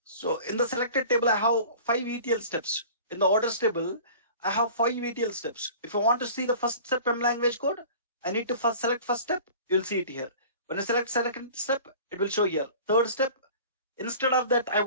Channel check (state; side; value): inverted; both; correlation -0.42